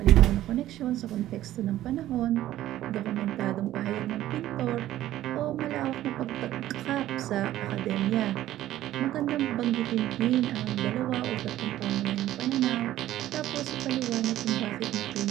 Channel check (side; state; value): left; quieter; 13.8 dB